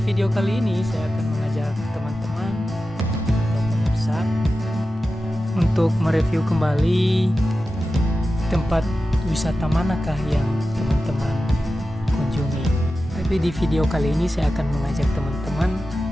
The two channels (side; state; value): both; normal; correlation 0.93